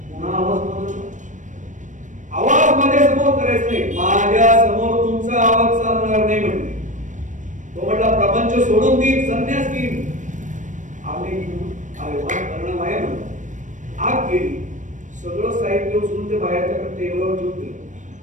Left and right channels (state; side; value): late; left; 0.36 ms